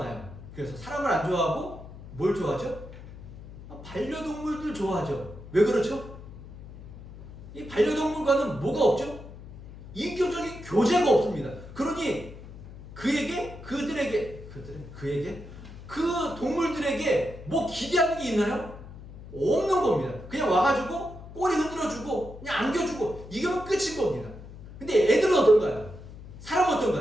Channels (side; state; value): left; noise; hum, 15 dB below the sound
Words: 그래서 사람을 안 좋아하고 뭘 좋아하죠? 반려동물들 좋아하죠. 왜 그렇죠? 이 반려동물과는 뭐가 없죠? 인격적인 교제가 없습니다. 그러니 그에게 그 동물들에게 뭐 기대하는 게 있나요? 없는 겁니다. 그냥 와가지고 꼬리 흔들어주고 그냥 안겨주고 이거면 끝인 겁니다. 근데 애들은 어떤가요? 사람은